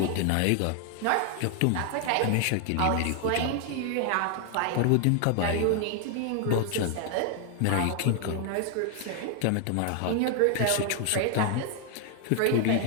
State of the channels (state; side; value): different; both; correlation 0.00